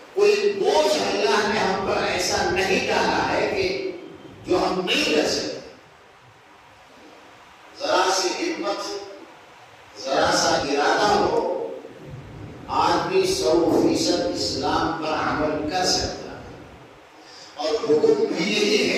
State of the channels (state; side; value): identical; both; correlation 1.00